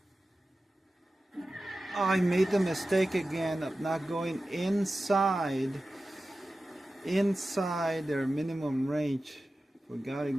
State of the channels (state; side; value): normal; both; correlation 0.94